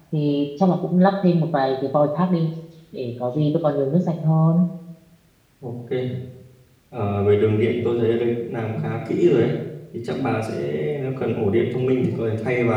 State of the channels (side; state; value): both; identical; correlation 1.00